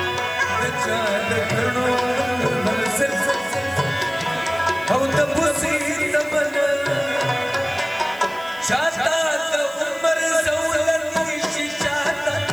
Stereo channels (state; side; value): noise; right; hiss, 22 dB below the sound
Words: جاهد तब से तमन्ना चाहता तो उमर ज़ौलत शिचाता